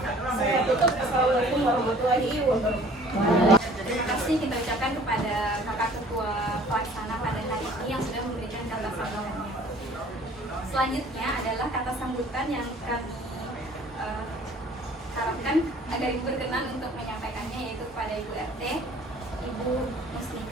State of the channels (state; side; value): normal; both; correlation 0.52